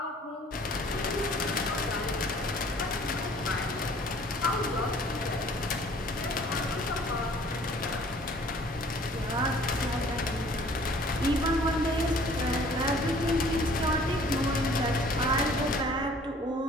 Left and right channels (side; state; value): both; normal; correlation 0.53